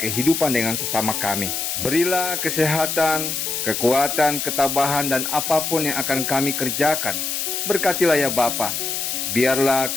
dengan sesama kami. Berilah kesehatan, kekuatan, ketabahan, dan apapun yang akan kami kerjakan. Berkatilah ya Bapa. Biarlah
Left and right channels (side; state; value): left; noise; hiss, 2 dB below the sound